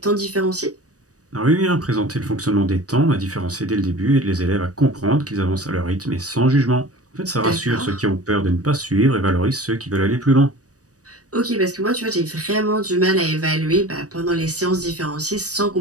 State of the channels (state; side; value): late; left; 0.66 ms